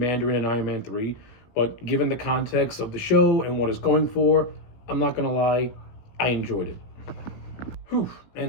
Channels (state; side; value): late; right; 17 ms